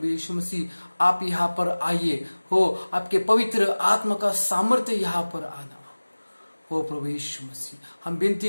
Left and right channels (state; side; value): inverted; both; correlation -1.00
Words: यीशु मसीह आप यहाँ पर आइए हो, आपके पवित्र आत्मा का सामर्थ्य यहाँ पर आना हो प्रभु यीशु मसीह। हम विनती